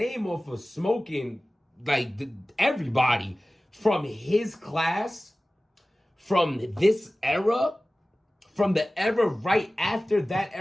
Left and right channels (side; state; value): both; normal; correlation 0.97